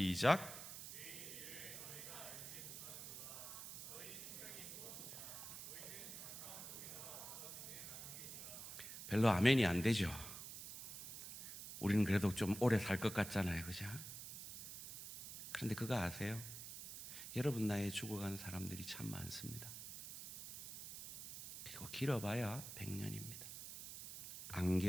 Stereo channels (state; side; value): noise; right; hiss, 9 dB below the sound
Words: 별로 아멘이 안 되죠. 우리는 그래도 좀 오래 살 것 같잖아요. 그죠? 그런데 그거 아세요? 여러분 나이에 죽어가는 사람들이 참 많습니다. 그리고 길어봐야 100년입니다.